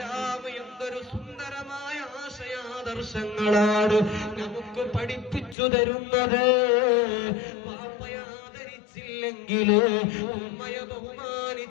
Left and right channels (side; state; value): right; drops out; at 5.6 s